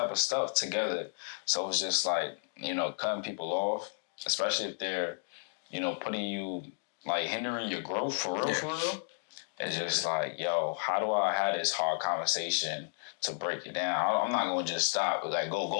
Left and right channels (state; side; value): silent; right; digital silence